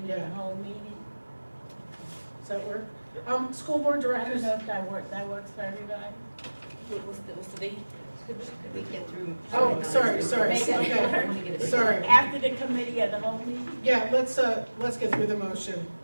the whole meeting. Does that work? School board I don't directors. know if that works for everybody. What's the date? Could we get through? Oh, sorry. Make it Okay. work. Sorry. After the committee of the whole meeting? Yeah, let's get through the motion.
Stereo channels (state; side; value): inverted; both; correlation -1.00